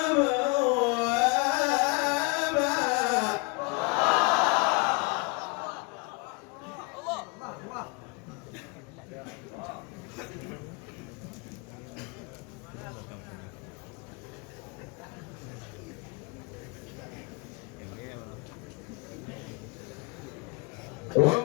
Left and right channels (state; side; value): quieter; right; 29.8 dB